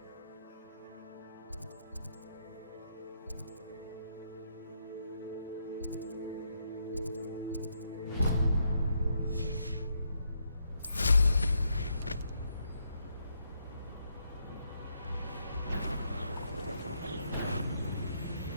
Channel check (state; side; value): inverted; both; correlation -0.77